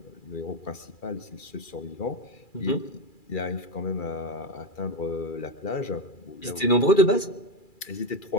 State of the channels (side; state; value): right; late; 2.4 ms